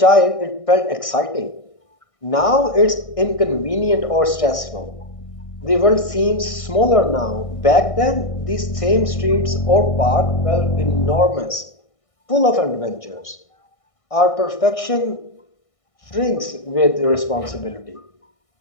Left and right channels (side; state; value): right; late; 1.6 ms